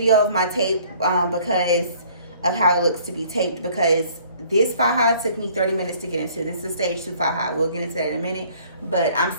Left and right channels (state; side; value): inverted; both; correlation -0.56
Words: of my tape because of how it looks to be taped, because this Faja took me 30 minutes to get into. This is stage 2 Faja. We'll get into that in a minute, but I'm